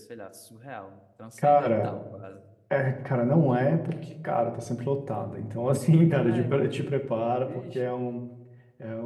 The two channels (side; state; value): both; identical; correlation 1.00